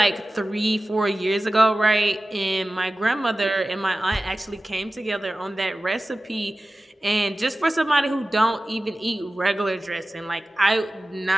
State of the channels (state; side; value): normal; both; correlation 0.96